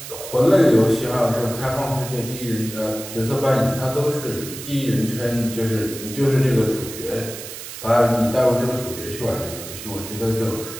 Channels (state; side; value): noise; right; hiss, 11 dB below the sound